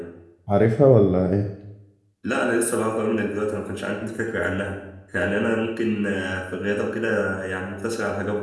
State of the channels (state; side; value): identical; both; correlation 1.00